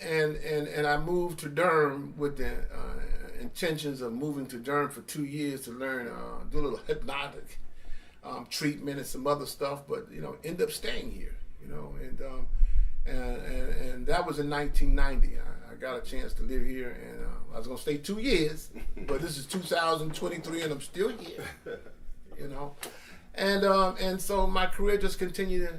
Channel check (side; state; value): both; identical; correlation 1.00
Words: I moved to Durham with the intentions of moving to Durham for 2 years to learn, do a little hypnotic treatment and some other stuff, but end up staying here, and that was in 1990. I got a chance to live here, and I was gonna stay 2 years, but this is 2023, and I'm still here, And so my career just